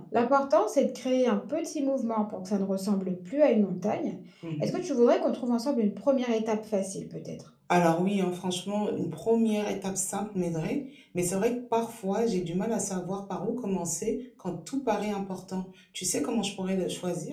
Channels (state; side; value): identical; both; correlation 1.00